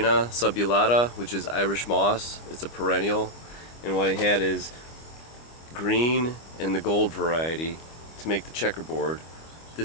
subulata, which is Irish moss. It's a perennial, and what I had is green and the gold variety to make the checkerboard.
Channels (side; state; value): right; late; 25 ms